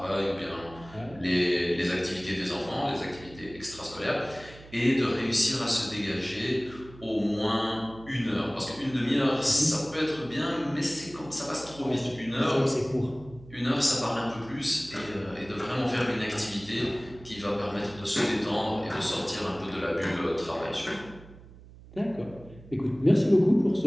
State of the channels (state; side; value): noise; right; hum, 20 dB below the sound